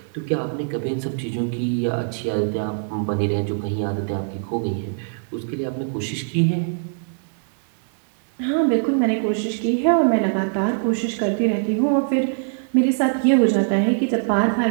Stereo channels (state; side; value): silent; left; digital silence